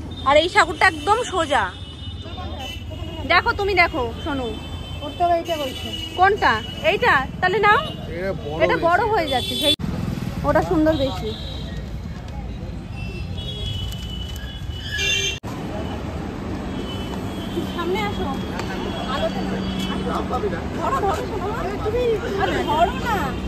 আর এই ঠাকুরটা একদম সোজা। দেখো, তুমি দেখো, শোনো, কোনটা? এইটা? তাহলে নাও, এটা বড় হয়ে যাচ্ছে, সেই ওটা সুন্দর বেশি। সামনে আসো, আলোতে ধরো, ধরো, তুমি ধরো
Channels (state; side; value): identical; both; correlation 1.00